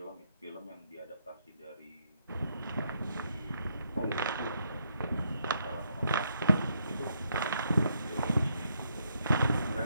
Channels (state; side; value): inverted; both; correlation -0.76